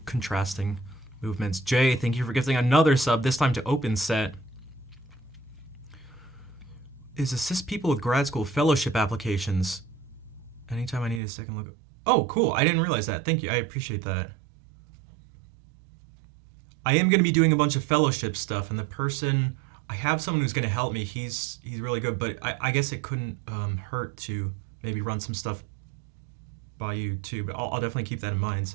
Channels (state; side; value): drops out; left; at 11.2 s